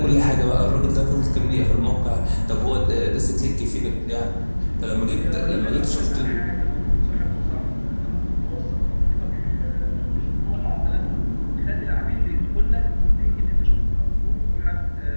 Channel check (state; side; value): inverted; both; correlation -1.00